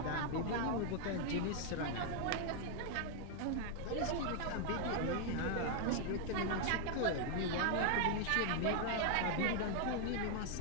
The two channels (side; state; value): both; different; correlation 0.00